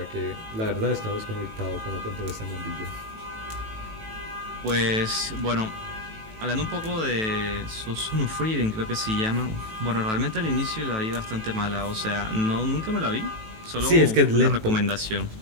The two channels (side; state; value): left; late; 18 ms